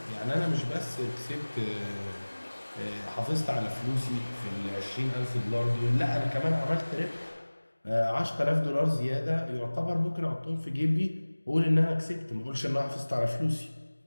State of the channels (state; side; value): inverted; both; correlation -1.00